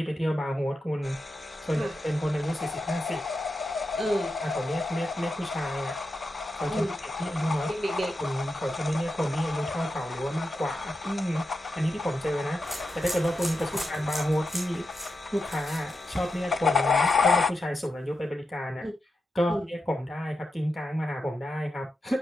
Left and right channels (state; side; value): normal; both; correlation 0.88